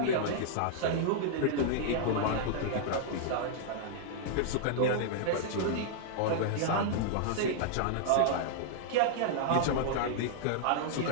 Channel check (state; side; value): different; both; correlation -0.01